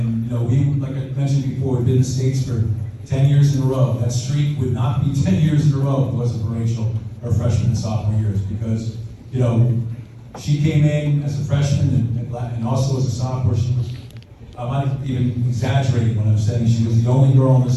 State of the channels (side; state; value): both; identical; correlation 1.00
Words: we, like I mentioned before, we've been in the States for 10 years in a row. That streak would not be 10 years in a row if it wasn't for Rachel, her freshman and sophomore years, because she came in as a freshman and also as a sophomore. She was, I might even exaggerate when I'm saying she was the only girl on